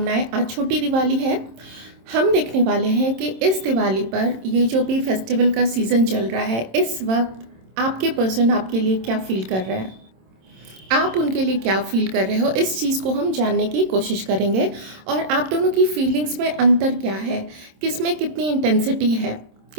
आज छोटी दिवाली है। हम देखने वाले हैं कि इस दिवाली पर ये जो भी फेस्टिवल का सीज़न चल रहा है, इस वक्त आपके पर्सन आपके लिए क्या फील कर रहे हैं, आप उनके लिए क्या फील कर रहे हो, इस चीज़ को हम जानने की कोशिश करेंगे। और आप दोनों की फीलिंग्स में अंतर क्या है, किस में कितनी इंटेंसिटी है,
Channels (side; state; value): left; late; 26 ms